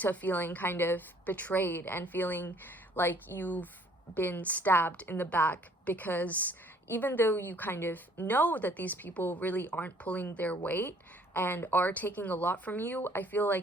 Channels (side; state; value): both; normal; correlation 0.59